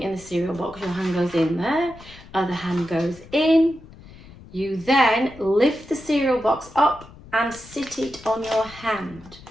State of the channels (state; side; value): noise; left; rumble, 20 dB below the sound